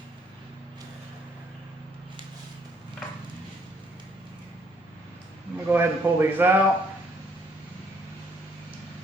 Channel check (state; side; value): normal; both; correlation 0.67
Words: I'm going to go ahead and pull these out.